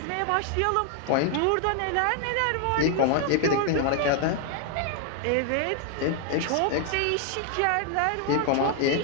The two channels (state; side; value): different; both; correlation 0.00